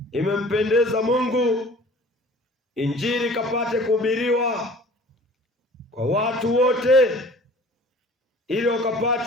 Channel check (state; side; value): normal; both; correlation 0.47